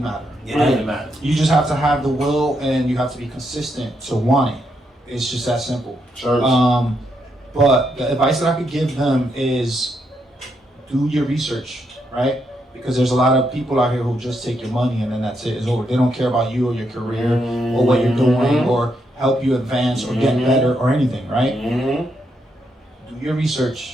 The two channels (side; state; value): both; normal; correlation 0.79